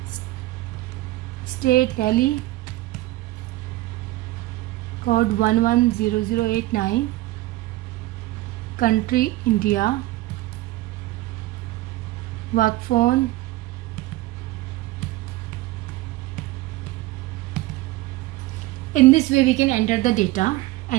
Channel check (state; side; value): quieter; left; 18.0 dB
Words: state Delhi, code 110089, country India, work phone, in this way we can enter the data